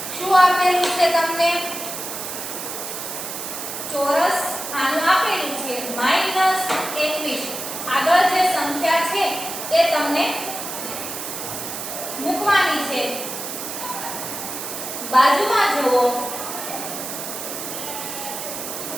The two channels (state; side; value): noise; right; hiss, 7 dB below the sound